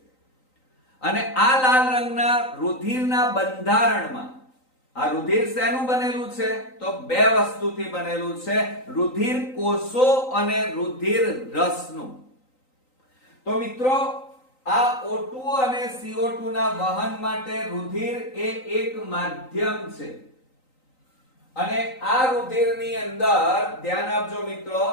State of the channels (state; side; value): late; right; 3.9 ms